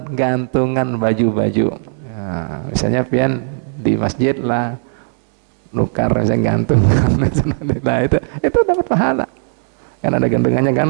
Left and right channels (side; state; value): left; silent; 68 dB below the other